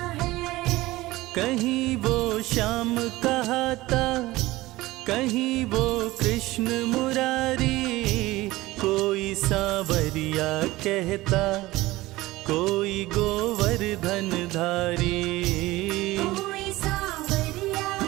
है। कहीं वो श्याम कहाता, कहीं वो कृष्ण मुरारी, कोई सांवरिया कहता, कोई गोवर्धन धारी। कोई सांवरिया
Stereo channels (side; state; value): left; quieter; 18.7 dB